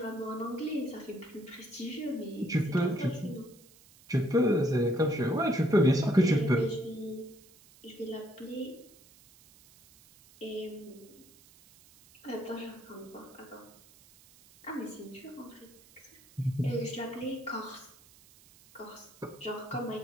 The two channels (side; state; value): right; noise; hiss, 25 dB below the sound